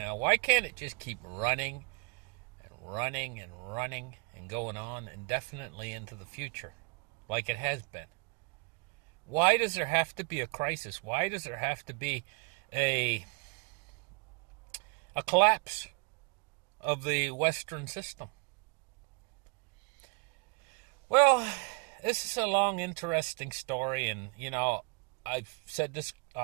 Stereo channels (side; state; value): left; quieter; 31.8 dB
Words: why can't it just keep running and running and running and going on indefinitely into the future like it has been? Why does there have to be a crisis? Why does there have to be a collapse of the Western system? Well, this is a long, interesting story, and, I've said this